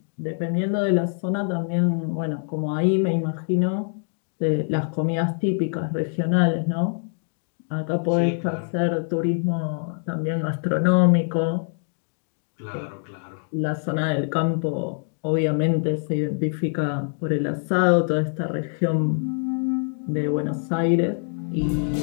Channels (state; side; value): silent; right; 60 dB below the other